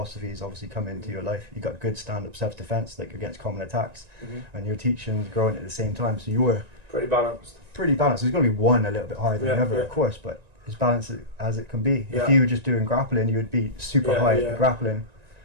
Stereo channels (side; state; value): left; late; 1.9 ms